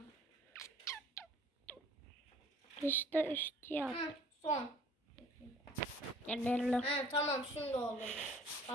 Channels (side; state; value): both; normal; correlation 0.53